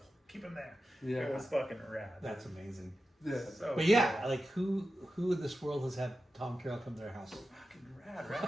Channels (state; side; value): normal; both; correlation 0.92